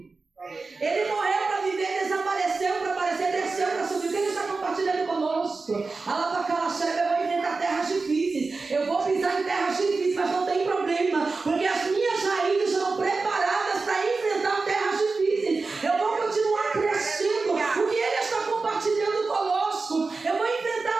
Ele morreu para viver, desapareceu para aparecer, desceu para subir. O que ele está compartilhando conosco? Eu vou enfrentar terras difíceis. Eu vou pisar em terras difíceis, mas não tem problema, porque as minhas raízes estão preparadas para enfrentar terras difíceis. Eu vou continuar crescendo. O que ele está compartilhando conosco? Eu vou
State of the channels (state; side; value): quieter; left; 4.0 dB